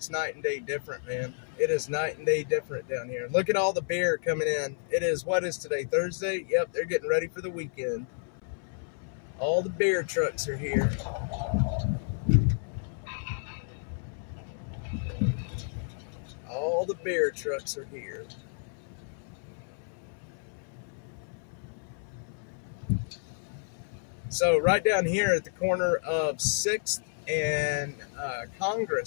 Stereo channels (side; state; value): right; silent; 57 dB below the other